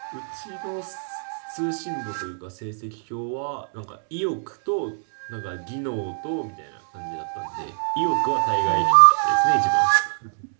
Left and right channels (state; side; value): silent; left; digital silence